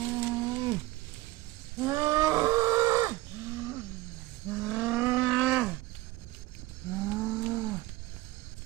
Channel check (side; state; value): left; quieter; 18.6 dB